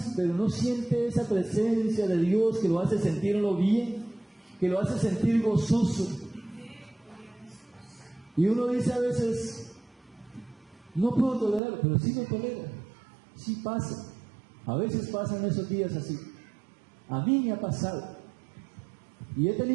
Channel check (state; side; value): drops out; left; at 11.6 s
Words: pero no siente esa presencia de Dios que lo hace sentirlo bien, que lo hace sentir gozoso. Y uno dice a veces, no puedo tolerarlo, pero sí lo tolera, sí pasa. A veces pasan esos días así. A mí me ha pasado. Y he